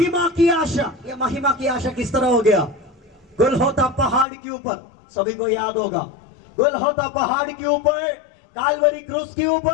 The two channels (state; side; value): drops out; right; at 4.2 s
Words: की आशा, ये महिमा की आशा किस तरह हो गया? गोलगोथा पहाड़ के ऊपर, सभी को याद होगा, गोलगोथा पहाड़ के ऊपर, कालवरी क्रूस के